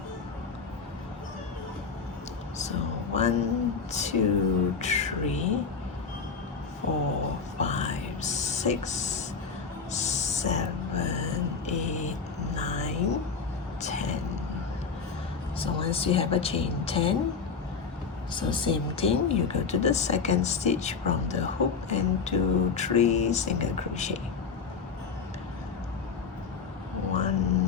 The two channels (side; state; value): right; quieter; 5.5 dB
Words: So 1, 2, 3, 4, 5, 6, 7, 8, 9, 10. So once you have a chain 10, so same thing, you go to the second stitch from the hook and do 3 single crochet.